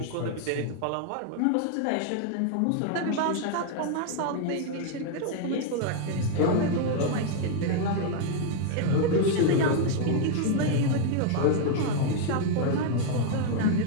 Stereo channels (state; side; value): different; both; correlation 0.00